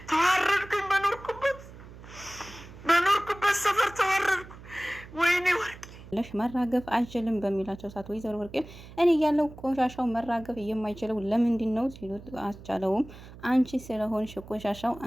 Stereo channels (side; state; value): right; noise; hum, 17 dB below the sound